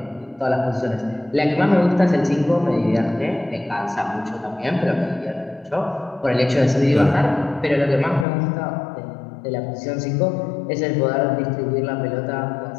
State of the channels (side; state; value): right; drops out; at 8.2 s